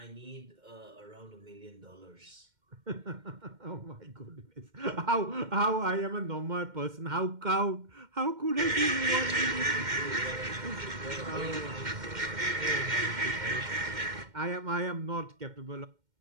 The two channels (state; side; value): late; left; 2.1 ms